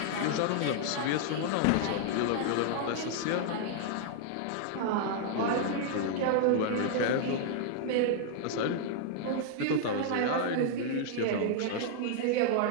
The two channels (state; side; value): different; both; correlation -0.01